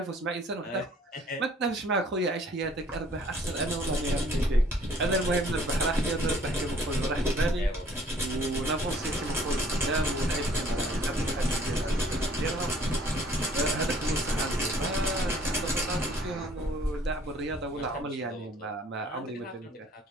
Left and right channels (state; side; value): normal; both; correlation 0.58